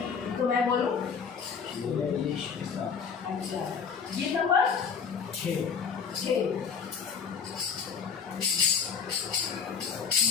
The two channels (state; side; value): quieter; right; 6.3 dB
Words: तो मैं बोलूँ? अच्छा, गीत नंबर 6।